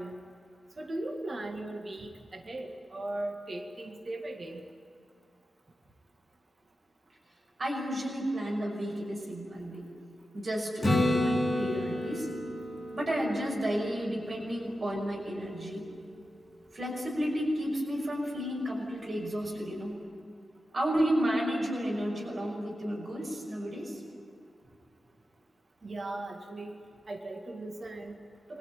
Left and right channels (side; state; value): both; normal; correlation 0.91